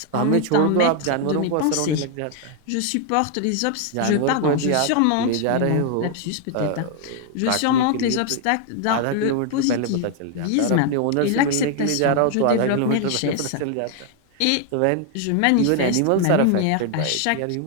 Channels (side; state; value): both; different; correlation 0.00